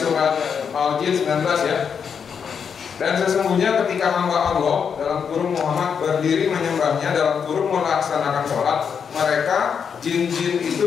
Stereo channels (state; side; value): quieter; right; 6.8 dB